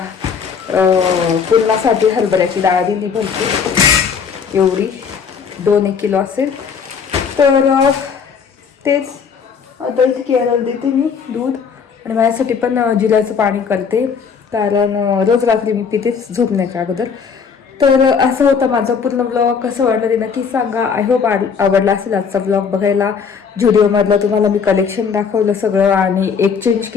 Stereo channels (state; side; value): quieter; right; 6.2 dB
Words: पुरणासाठी हरभऱ्याची डाळ दिली भरपूर, एवढी 2-1 किलो असेल. तर तेच आता इथे केळाला देते मी दूध आणि माझ्यासाठी पण जिऱ्याचं पाणी करते, कारण रोज रात्री मी पितेच झोपण्याच्या अगोदर. तर असं होतं माझा पूर्ण ब्लॉग. कसं वाटलं ते नक्की सांगा. आय होप आवडला असेल आजचा ब्लॉग बघायला. व्हिडिओमधलं तुम्हाला मी कलेक्शन दाखवलं सगळं आणि एक्सचेंज